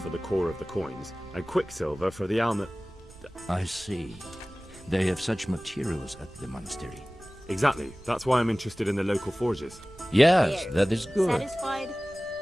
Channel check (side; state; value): right; noise; rumble, 22 dB below the sound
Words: the core of the coins and quicksilver for the almond. I see. They have such materials at the monastery. Exactly. That's why I'm interested in the local forges. Yes, that is good. Satisfied?